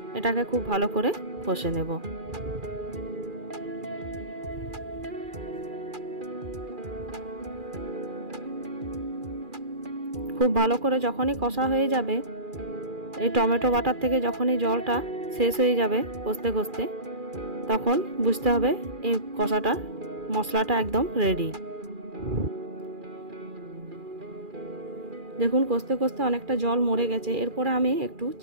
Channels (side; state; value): left; late; 2.4 ms